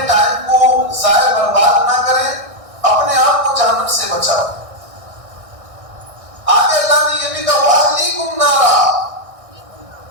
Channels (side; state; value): left; late; 1.6 ms